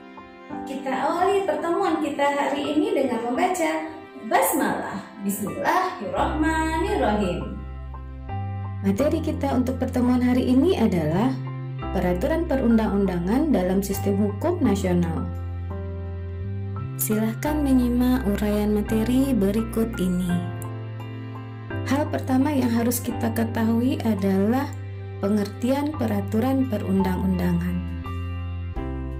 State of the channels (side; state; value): both; identical; correlation 1.00